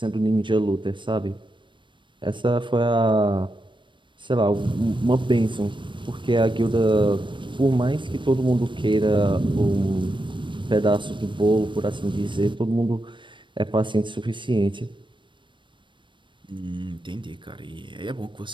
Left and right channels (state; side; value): late; left; 0.23 ms